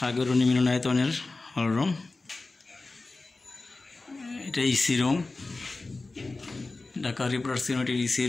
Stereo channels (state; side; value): quieter; right; 3.4 dB